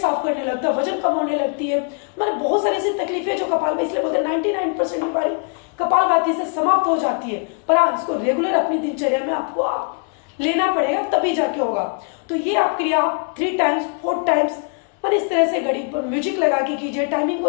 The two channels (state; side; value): quieter; right; 39.3 dB